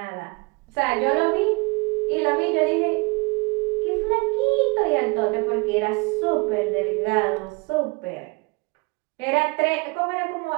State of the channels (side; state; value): left; quieter; 28.2 dB